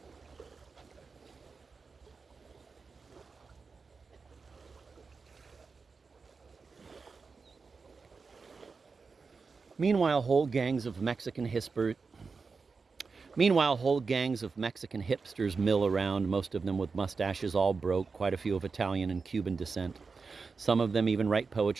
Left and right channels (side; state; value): left; quieter; 4.7 dB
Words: Meanwhile, whole gangs of Mexican hipsters mill around, most of them with mustaches all broke, quite a few of Italian and Cuban descent. Some of them even write